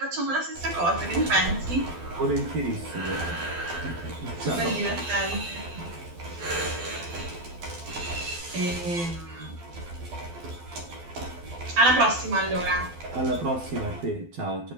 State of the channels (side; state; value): left; late; 12 ms